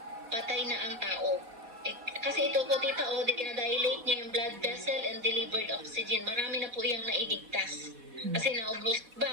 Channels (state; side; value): late; left; 4.1 ms